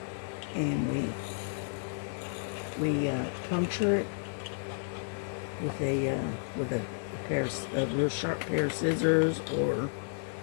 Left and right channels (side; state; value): right; silent; digital silence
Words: and we puncture it with a real sharp pair of scissors or